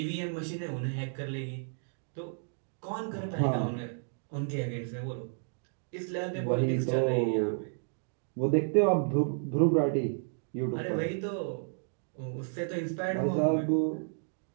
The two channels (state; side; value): silent; left; digital silence